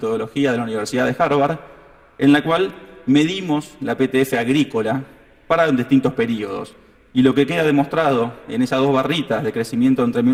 de la Universidad de Harvard, en la cual medimos la PTF agrícola para distintos periodos. Y lo que queda demostrado en esas dos barritas de crecimiento entre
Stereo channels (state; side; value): identical; both; correlation 1.00